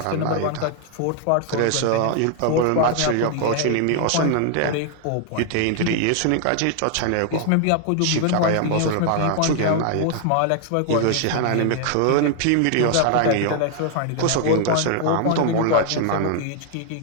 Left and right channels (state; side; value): different; both; correlation 0.00